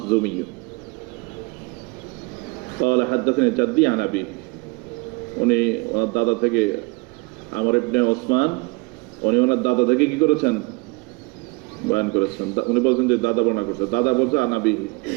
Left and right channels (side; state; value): left; quieter; 27.5 dB